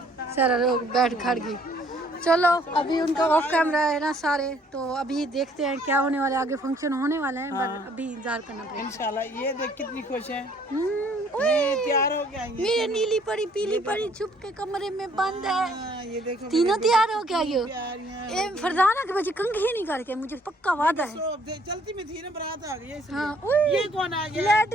सारा लोग बैठ खड़ गई। चलो अभी उनका ऑफ कैमरा है ना सारे, तो अभी देखते हैं क्या होने वाला है, आगे फंक्शन होने वाला है, पर अभी इंतजार करना पड़ेगा इंशाल्लाह। ये देख कितनी खुश है, ये तैयार हो गया। मेरे नीली परी पीली परी छुप के कमरे में बंद है, ये देखो तीनों तैयार हो गया। ये फरजाना के बच्चे कंघी नहीं करके, मुझे पक्का वादा है। चलती में थी ना बारात आ गई। हाँ ये कौन आ गया? लाइट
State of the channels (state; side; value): normal; both; correlation 0.62